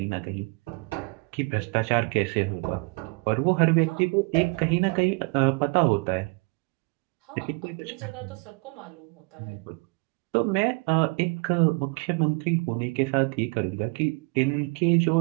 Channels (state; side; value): quieter; left; 30.5 dB